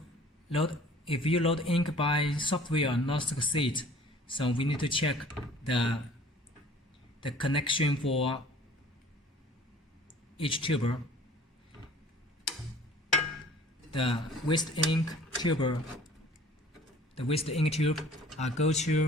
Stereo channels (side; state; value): both; normal; correlation 0.50